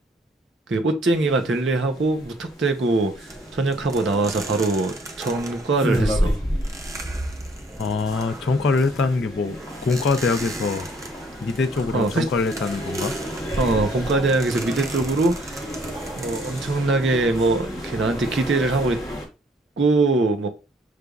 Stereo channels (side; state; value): both; normal; correlation 0.61